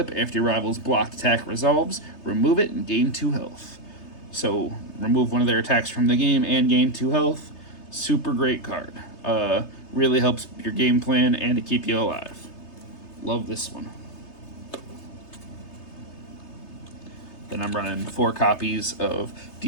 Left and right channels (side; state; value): right; late; 3.3 ms